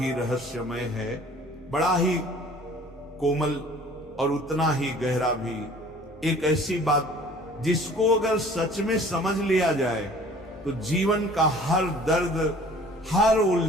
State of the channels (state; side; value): normal; both; correlation 0.50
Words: रहस्यमय है, बड़ा ही कोमल और उतना ही गहरा भी। एक ऐसी बात जिसको अगर सच में समझ लिया जाए तो जीवन का हर दर्द, हर